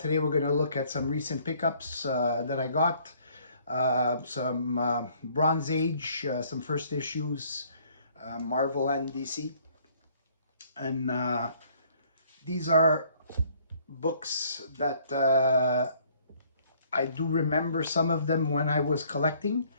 we're going to look at some recent pickups that I got. Some Bronze Age, some first issues, Marvel and DC. And these are books that I do remember some of them when I was collecting.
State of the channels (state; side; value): inverted; both; correlation -0.61